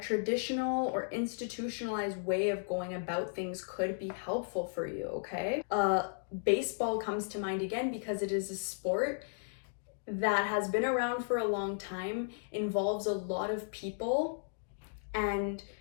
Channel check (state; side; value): silent; right; digital silence